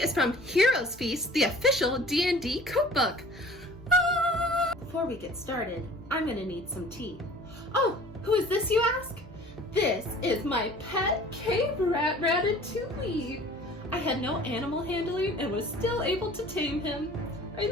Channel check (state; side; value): normal; both; correlation 0.47